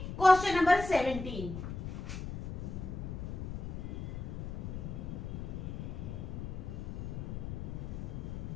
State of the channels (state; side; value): noise; left; rumble, 6 dB below the sound